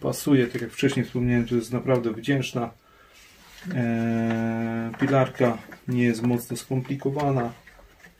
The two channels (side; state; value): both; identical; correlation 1.00